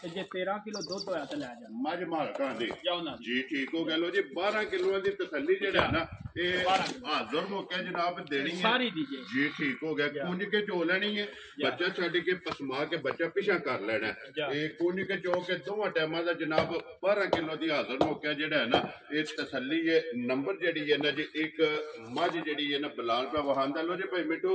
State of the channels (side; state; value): both; identical; correlation 1.00